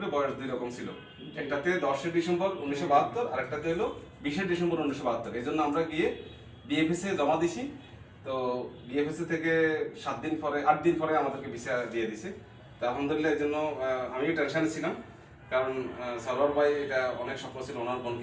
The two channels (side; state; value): both; identical; correlation 1.00